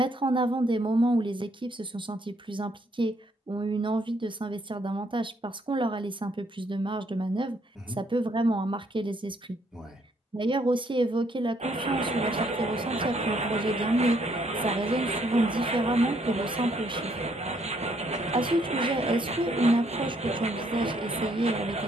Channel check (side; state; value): both; normal; correlation 0.69